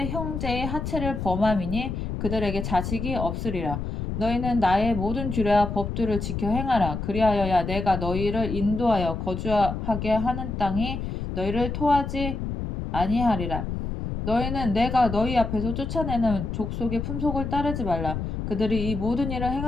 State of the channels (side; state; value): left; noise; rumble, 4 dB below the sound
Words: 형제의 하체를 범함이니 그들에게 자식이 없으리라. 너희는 나의 모든 규례와 법도를 지켜 행하라. 그리하여야 내가 너희를 인도하여 거주하게 하는 땅이 너희를 토하지 아니하리라. 너희는 내가 너희 앞에서 쫓아내는 족속의 품속을 따르지 말라. 그들이 이 모든 일을